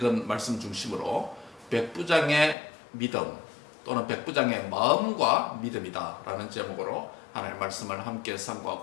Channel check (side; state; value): right; drops out; at 2.6 s